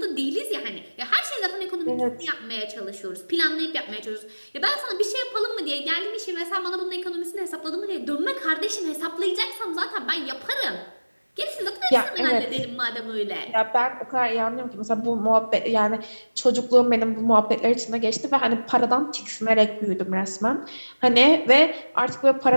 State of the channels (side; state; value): both; inverted; correlation -1.00